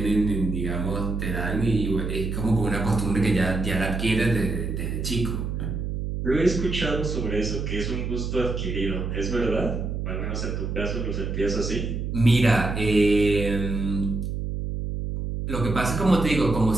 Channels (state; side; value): noise; right; hum, 3 dB below the sound